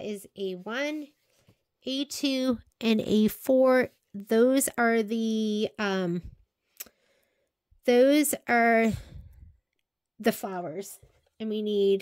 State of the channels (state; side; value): identical; both; correlation 1.00